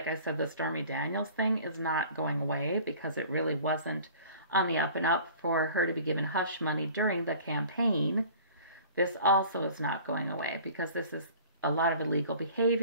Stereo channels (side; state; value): both; inverted; correlation -0.47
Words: I said, the Stormy Daniels thing is not going away because it really wasn't on the up and up for her to be given hush money during the campaign. This also is not going away because this is a lot of illegal